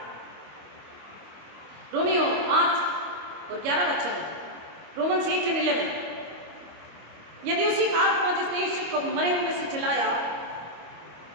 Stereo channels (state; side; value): late; left; 25 ms